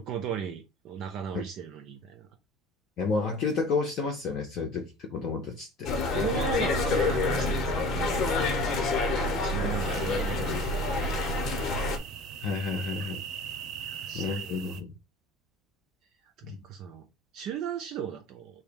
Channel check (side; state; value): both; normal; correlation 0.42